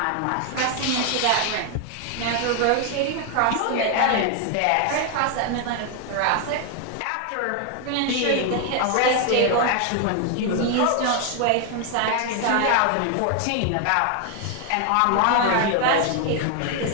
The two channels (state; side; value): different; both; correlation 0.01